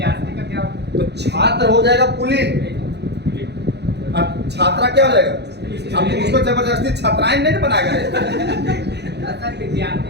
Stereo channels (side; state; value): left; late; 0.49 ms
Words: का क्या? तो छात्र हो जाएगा पुल्लिंग, और छात्रा क्या हो जाएगा? अब तुम उसको जबरदस्ती छात्राएं नहीं बनाएगा।